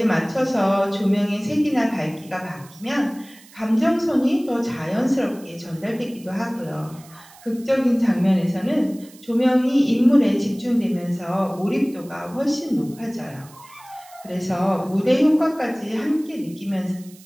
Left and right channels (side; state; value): right; noise; hiss, 23 dB below the sound